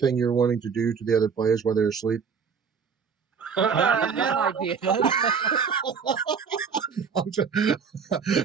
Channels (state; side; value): quieter; left; 6.2 dB